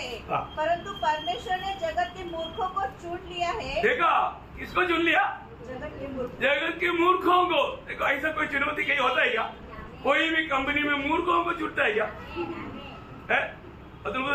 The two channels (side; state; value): both; identical; correlation 1.00